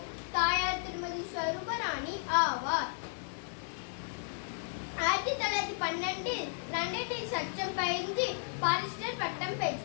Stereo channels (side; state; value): right; silent; digital silence